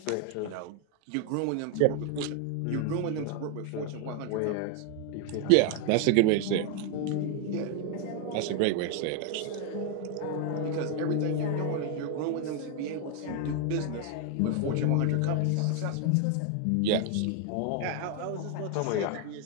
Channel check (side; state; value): both; different; correlation 0.01